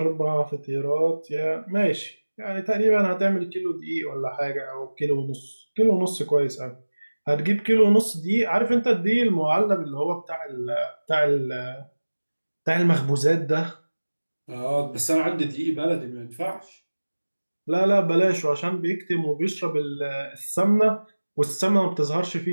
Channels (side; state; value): both; inverted; correlation -1.00